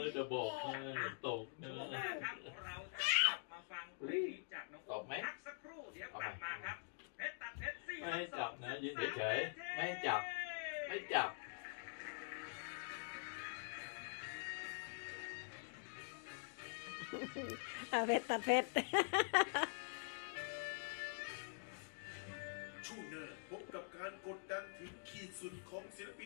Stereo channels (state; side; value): silent; right; digital silence